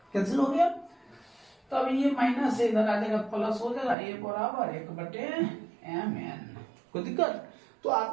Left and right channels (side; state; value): left; drops out; at 4.0 s